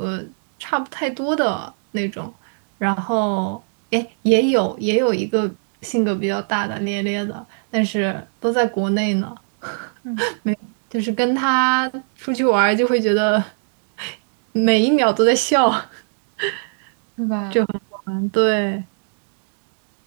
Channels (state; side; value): silent; left; 62 dB below the other